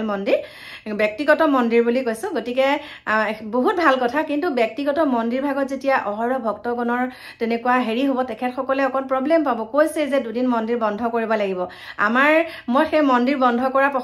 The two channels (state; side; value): identical; both; correlation 1.00